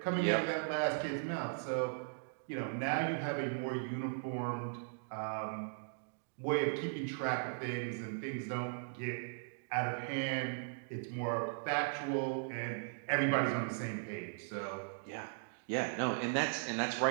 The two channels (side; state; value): left; silent; digital silence